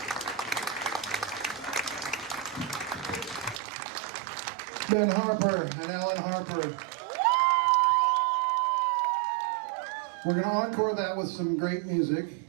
Ben Harper and Ellen Harper. We're going to encore that with some great music.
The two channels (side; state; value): left; drops out; at 3.6 s